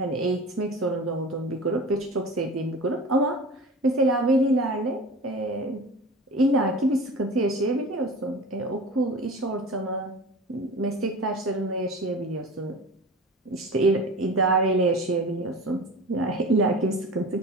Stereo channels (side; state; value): both; normal; correlation 0.35